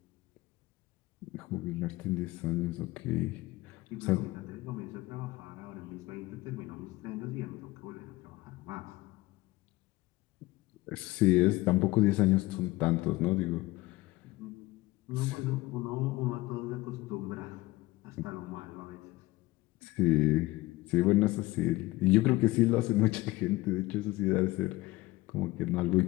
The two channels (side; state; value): right; quieter; 19.7 dB